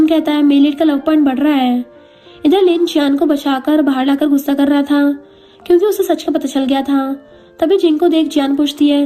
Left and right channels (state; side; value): identical; both; correlation 1.00